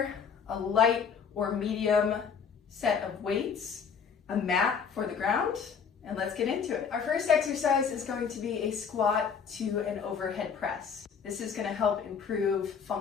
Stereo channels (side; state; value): right; quieter; 6.6 dB